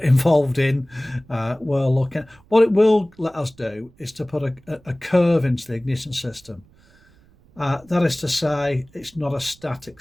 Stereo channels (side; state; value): right; noise; rumble, 29 dB below the sound